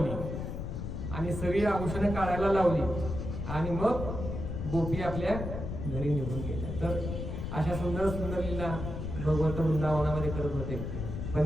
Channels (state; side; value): noise; left; rumble, 5 dB below the sound